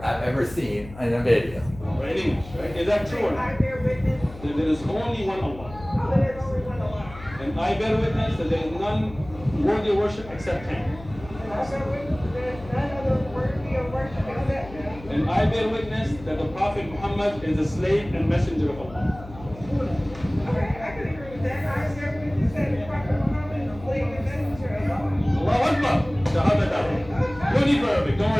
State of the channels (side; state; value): left; noise; hum, 16 dB below the sound